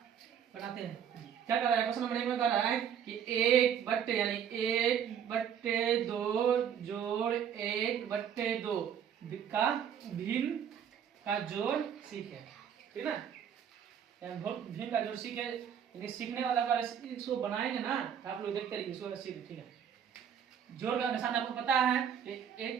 बनाते हैं। क्या कर रहा है क्वेश्चन नंबर 1 में, कर रहा है कि 1/, यानी 1/2 जोड़ 1/2 का भिन्न का जोड़ सीखे, ठीक ना। भिन्न का जोड़ सीखे, लेकिन सीखने वाला का इसको बनाएंगे ना तो आप लोग देखते रहिए, इसको सीखे, ठीक है। जोड़ का निशान आपको पता है कि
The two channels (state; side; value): quieter; left; 8.6 dB